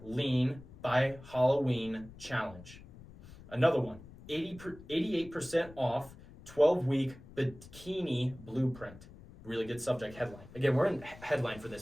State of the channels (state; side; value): noise; left; rumble, 19 dB below the sound